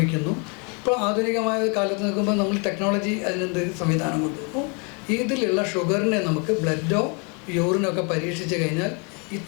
ഇപ്പോൾ ആധുനികമായ കാലത്ത് നിൽക്കുമ്പോൾ നമ്മൾ ടെക്നോളജി അതിനെന്ത് സംവിധാനം കൊണ്ടുവന്നു. ഇതിലുള്ള ഷുഗറിനെ നമുക്ക് ബ്ലഡോ യൂറിനൊക്കെ പരീക്ഷിച്ച് കഴിഞ്ഞാൽ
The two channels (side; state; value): right; quieter; 34.5 dB